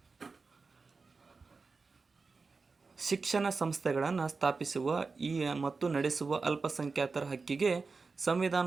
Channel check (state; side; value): quieter; left; 4.4 dB